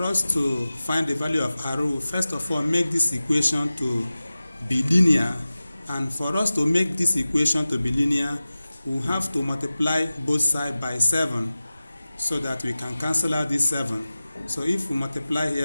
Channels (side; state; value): both; inverted; correlation -0.96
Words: us to find the value of r, we first of all make this equation to be linear, and for us to make this equation to be linear, we have to multiply both sides by 7 so that we can cancel out this 7. So if we multiply